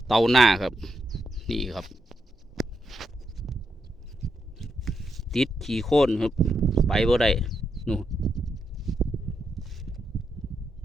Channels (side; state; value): both; normal; correlation 0.82